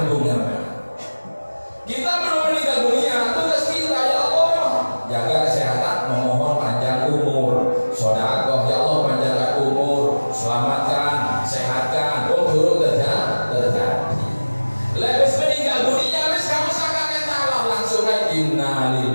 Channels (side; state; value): both; inverted; correlation -1.00